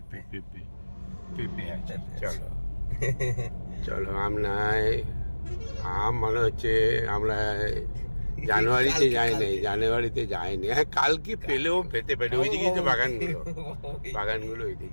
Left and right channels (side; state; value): both; inverted; correlation -1.00